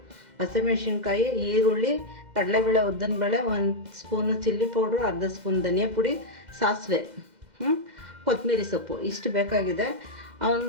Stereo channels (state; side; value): late; left; 2.0 ms